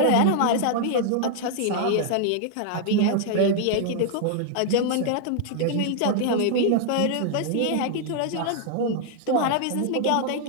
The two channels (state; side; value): different; both; correlation 0.00